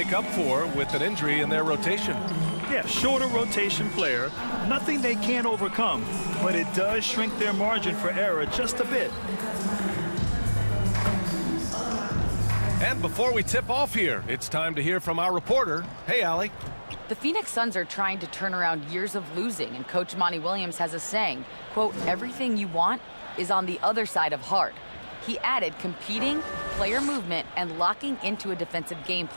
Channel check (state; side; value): inverted; both; correlation -1.00